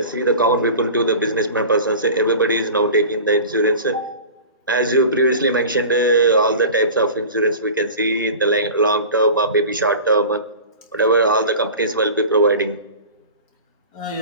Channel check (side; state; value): both; inverted; correlation -0.36